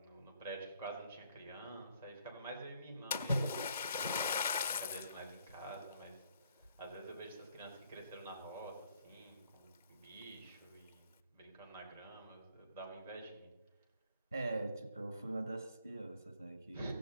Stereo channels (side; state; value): both; inverted; correlation -0.65